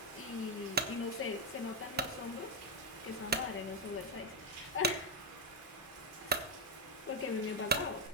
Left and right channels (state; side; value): normal; both; correlation 0.03